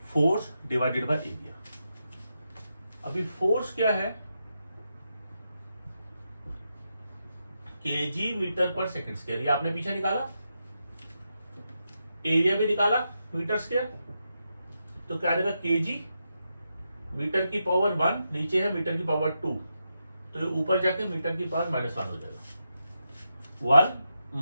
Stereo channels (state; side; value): inverted; both; correlation -0.86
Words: force divided by area. अभी फोर्स क्या है? केजी मीटर पर सेकंड स्क्वायर। ये आपने पीछे निकाला, एरिया भी निकाला मीटर स्क्वायर, तो क्या आएगा? केजी मीटर की पावर 1, नीचे है मीटर की पावर 2, तो ये ऊपर जाके मीटर की पावर -1 हो जाएगा।